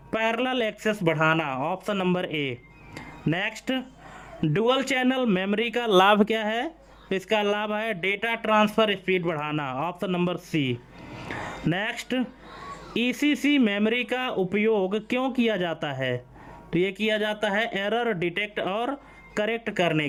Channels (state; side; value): identical; both; correlation 1.00